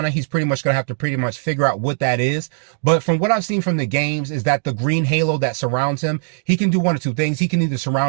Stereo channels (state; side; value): silent; left; digital silence